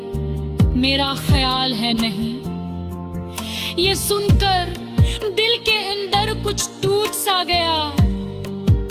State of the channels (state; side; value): identical; both; correlation 1.00